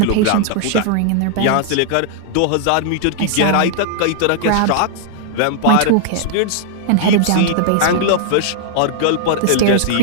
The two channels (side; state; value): both; different; correlation -0.01